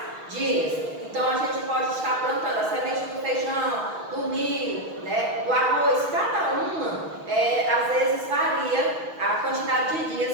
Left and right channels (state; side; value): late; left; 6.2 ms